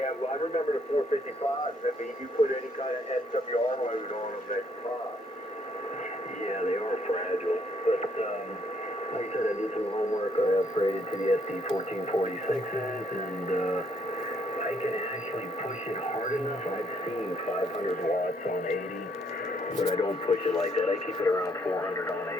well, I remember the 455s. I mean, you put any kind of SWR load on them, they pop. Yeah, they are fragile. But, like I said, I did some homework. I upgraded to the SD1446s, and I can actually push it hard enough. I've seen 500 watts on 80. But I don't push it like that. I keep it around 400 on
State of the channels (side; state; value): both; normal; correlation 0.69